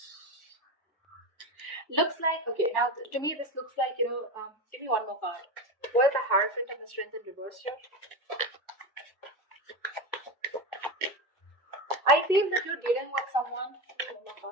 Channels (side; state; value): both; normal; correlation 0.20